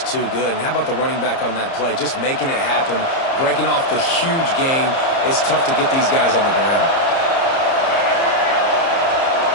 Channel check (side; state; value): right; late; 30 ms